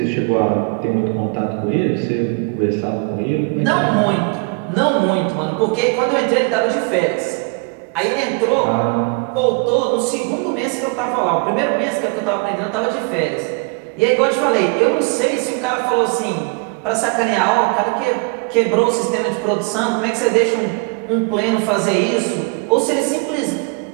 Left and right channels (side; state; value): left; quieter; 32.6 dB